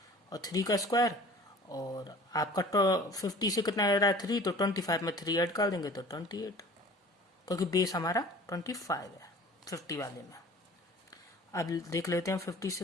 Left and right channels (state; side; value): normal; both; correlation 0.45